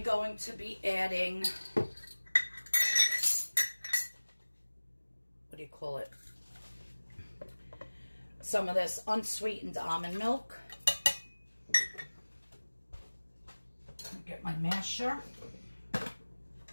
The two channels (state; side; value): inverted; both; correlation -1.00